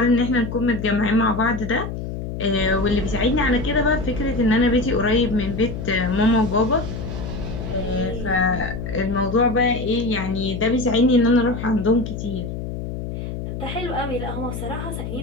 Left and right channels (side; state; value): left; noise; hum, 6 dB below the sound